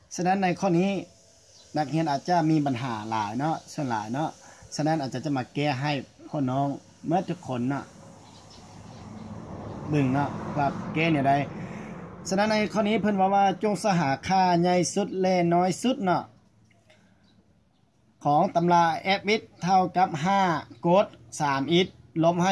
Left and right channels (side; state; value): both; identical; correlation 1.00